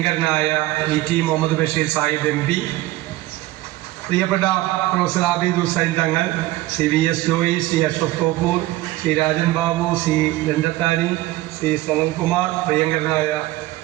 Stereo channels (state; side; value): quieter; left; 17.3 dB